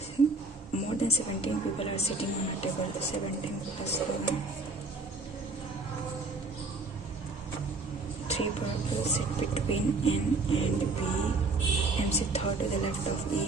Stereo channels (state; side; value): quieter; left; 3.5 dB